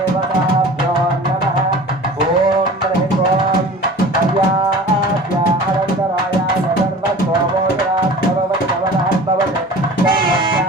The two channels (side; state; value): both; normal; correlation 0.40